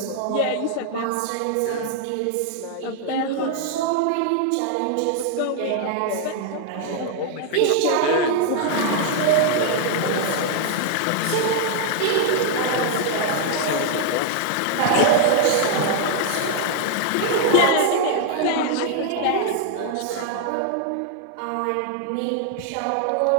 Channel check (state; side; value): different; both; correlation 0.00